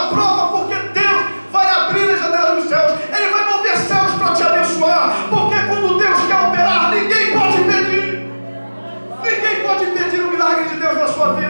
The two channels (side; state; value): both; inverted; correlation -1.00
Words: prova, porque Deus vai abrir as janelas dos céus. Ele vai mover céus para te abençoar. Porque quando Deus quer operar, ninguém pode impedir. Ninguém pode impedir o milagre de Deus na sua